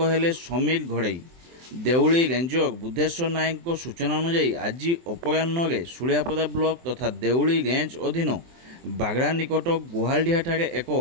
हेले समीर घड़ई। देउली रेंजर बुद्धेश्वर नायक सूचना अनुसार आज अपराह्न सुलियापदा ब्लॉक तथा देउली रेंज अधीन बागड़ा निकट गुहालडिहा ठारे एक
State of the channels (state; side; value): late; left; 23 ms